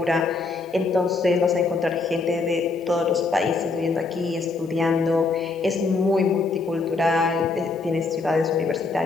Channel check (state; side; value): quieter; right; 3.9 dB